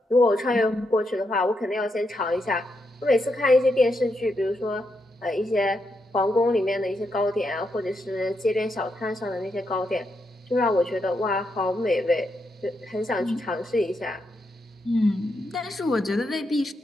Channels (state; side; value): normal; both; correlation 0.82